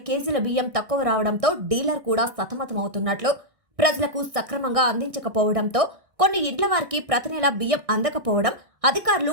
కేజీల బియ్యం తక్కువ రావడంతో డీలర్ కూడా సతమతమవుతున్నట్లు, ప్రజలకు సక్రమంగా అందించకపోవడంతో కొన్ని ఇండ్ల వారికి ప్రతి నెల బియ్యం అందకపోవడం, అధికారులు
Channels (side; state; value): left; late; 1.6 ms